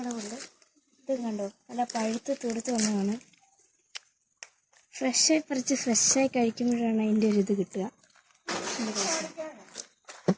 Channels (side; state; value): both; identical; correlation 1.00